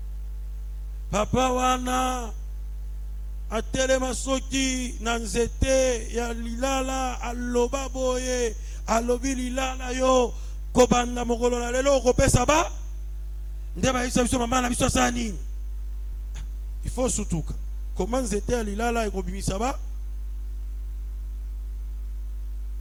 papa wana atelema soki na nzete ya lilala aloba boye alobi lilala yo kobanda mokolo na lelo okopesa ba nde bayebisa biso mama na biso asala nini. Il faut sutuka koma nzete ya lilala ekobimisa ba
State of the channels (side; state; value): both; identical; correlation 1.00